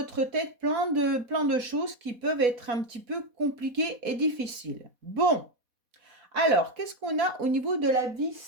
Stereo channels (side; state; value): left; late; 4.1 ms